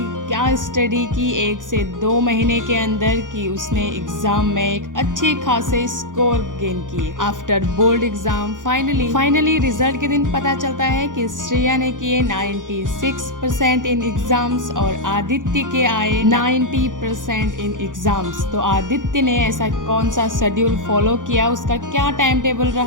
क्या स्टडी की 1 से 2 महीने के अंदर कि उसने एग्जाम में एक अच्छे खासे स्कोर गेन किए। After board exam finally result के दिन पता चलता है कि श्रेया ने किए 96% इन एग्जाम्स और आदित्य के आए 90% इन एग्जाम्स। तो आदित्य ने ऐसा कौन सा शेड्यूल फॉलो किया, उसका क्या टाइम टेबल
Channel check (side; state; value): left; late; 0.88 ms